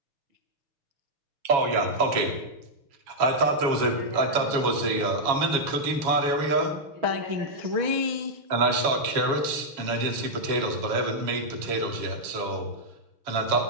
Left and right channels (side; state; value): left; late; 7.2 ms